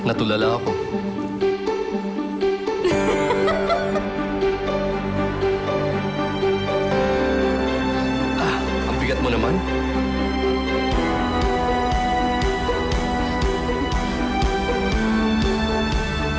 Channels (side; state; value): both; identical; correlation 1.00